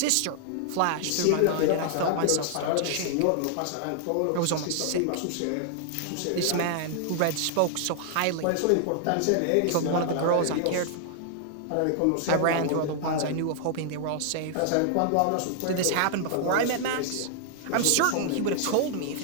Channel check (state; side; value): different; both; correlation 0.00